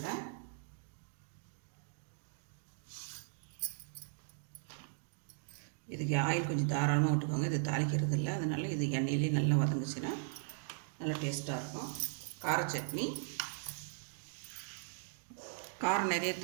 இதுக்கு ஆயில் கொஞ்சம் தாராளமாக விட்டுக்கோங்க. இது தாளிக்கிறது இல்லை, அதனால் இது எண்ணெயிலே நல்லா வதங்குச்சுன்னா நல்லா டேஸ்ட்டாக இருக்கும். கார சட்னி காரம் நிறைய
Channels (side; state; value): left; silent; digital silence